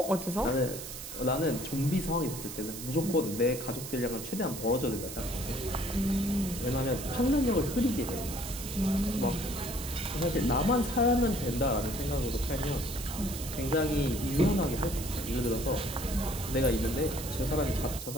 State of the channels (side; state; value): right; noise; hiss, 9 dB below the sound